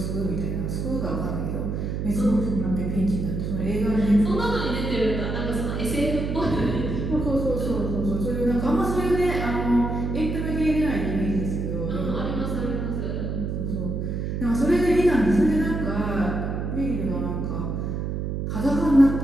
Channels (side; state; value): right; noise; hum, 2 dB below the sound